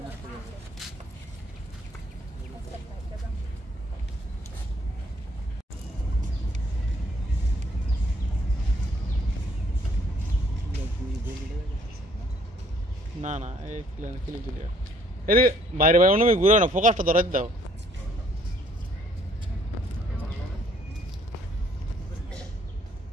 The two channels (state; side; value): normal; both; correlation 0.63